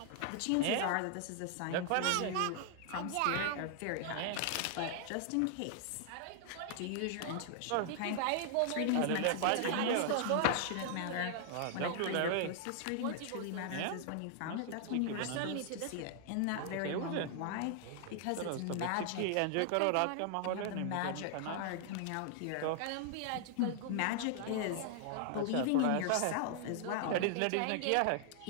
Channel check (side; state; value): both; different; correlation 0.00